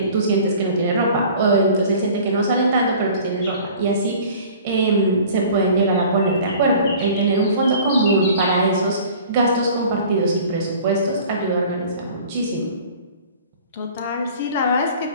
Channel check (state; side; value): inverted; both; correlation -0.46